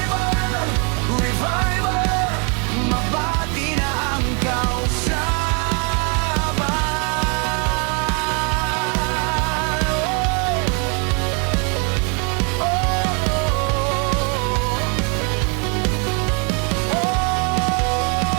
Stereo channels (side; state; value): left; quieter; 35.8 dB